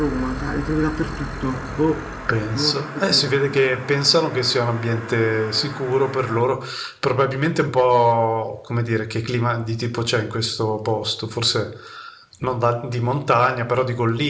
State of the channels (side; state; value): both; identical; correlation 1.00